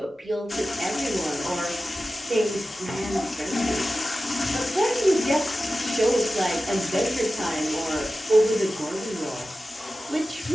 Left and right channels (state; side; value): normal; both; correlation 0.94